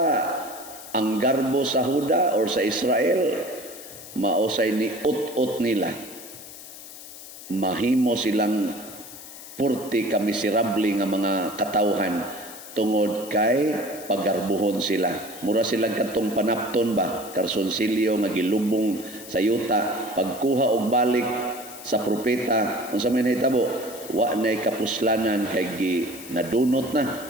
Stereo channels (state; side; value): noise; left; hiss, 15 dB below the sound